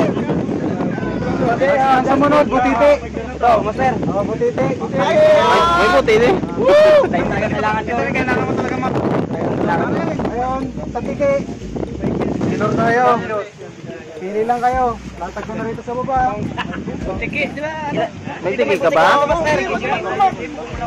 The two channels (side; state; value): both; identical; correlation 1.00